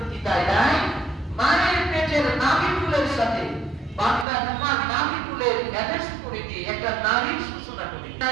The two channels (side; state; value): left; drops out; at 4.2 s